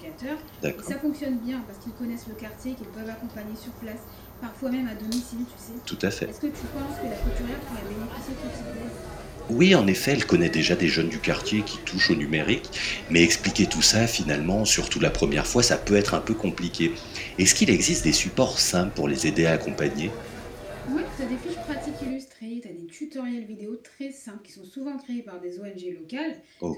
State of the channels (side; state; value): both; identical; correlation 1.00